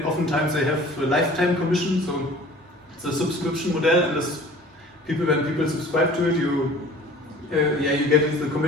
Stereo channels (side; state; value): both; normal; correlation 0.46